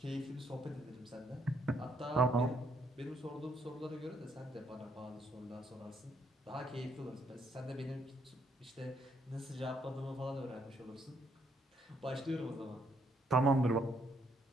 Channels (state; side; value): normal; both; correlation 0.72